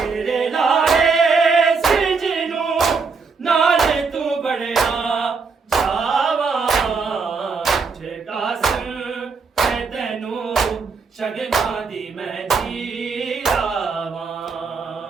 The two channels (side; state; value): left; quieter; 4.9 dB